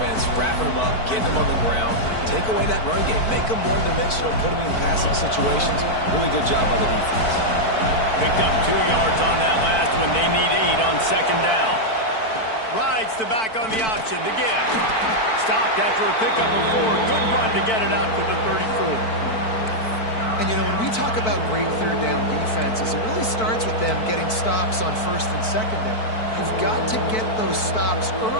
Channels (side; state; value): right; late; 4.5 ms